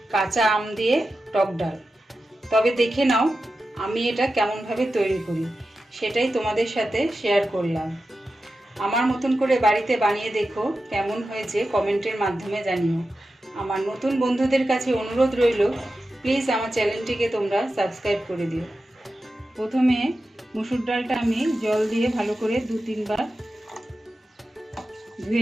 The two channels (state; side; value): normal; both; correlation 0.92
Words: কাঁচা আম দিয়ে টক ডাল। তবে দেখে নাও আমি এটা কেমনভাবে তৈরি করি, সেটাই তোমাদের সাথে শেয়ার করলাম। আমার মতন করে বাড়িতে বানিয়ে দেখো, কেমন হয়েছে কমেন্টের মাধ্যমে জানিও। আমার নতুন বন্ধুদের কাছে অনুরোধ রইল, প্লিজ আমার চ্যানেলটিকে তোমরা সাবস্ক্রাইব করে দিও। প্রথমে মুসুর ডালটা আমি জল দিয়ে ভালো করে 2-3 বার